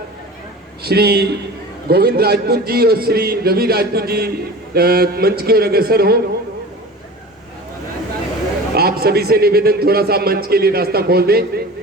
श्री गोविंद राजपूत जी और श्री रवि राजपूत जी मंच की ओर अग्रसर हो। आप सभी से निवेदन, थोड़ा सा मंच के लिए रास्ता खोल दें।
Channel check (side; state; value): both; normal; correlation 0.36